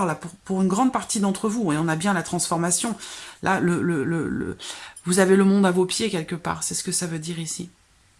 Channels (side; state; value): both; identical; correlation 1.00